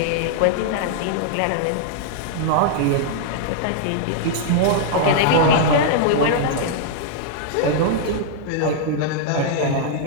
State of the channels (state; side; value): different; both; correlation -0.01